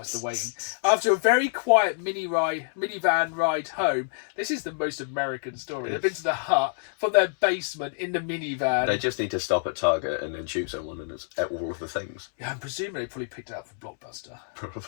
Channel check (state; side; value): silent; right; 60 dB below the other